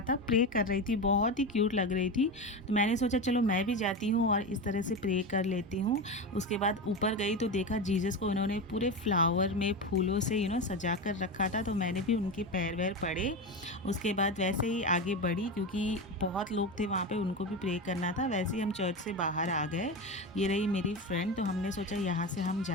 था, प्रे कर रही थी, बहुत ही क्यूट लग रही थी। तो मैंने सोचा चलो मैं भी जाती हूँ और इस तरह से प्रे कर लेती हूँ। उसके बाद ऊपर गई तो देखा जीसस को उन्होंने पूरे फ्लावर में फूलों से सजा कर रखा था, तो मैंने भी उनके पैर वैर पड़े। उसके बाद वैसे ही आगे बढ़ी क्योंकि बहुत लोग थे वहाँ पर, उनको भी प्रे करना था। वैसे ही हम चर्च से बाहर आ गए। ये रही मेरी फ्रेंड, तो हमने सोचा यहाँ से हम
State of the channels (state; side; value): normal; both; correlation 0.20